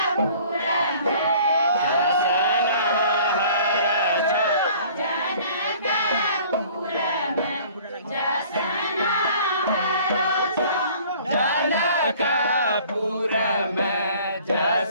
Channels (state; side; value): inverted; both; correlation -0.51